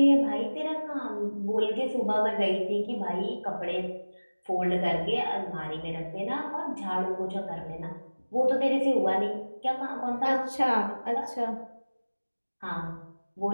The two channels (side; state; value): both; inverted; correlation -1.00